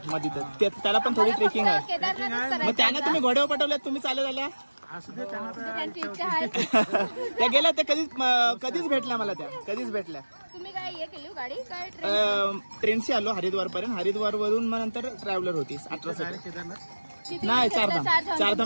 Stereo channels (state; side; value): inverted; both; correlation -1.00